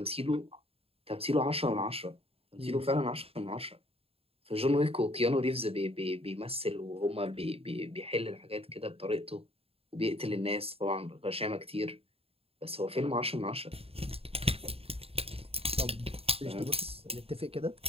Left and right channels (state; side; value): late; left; 0.28 ms